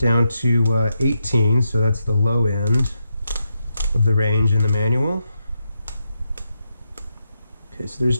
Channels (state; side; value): inverted; both; correlation -0.84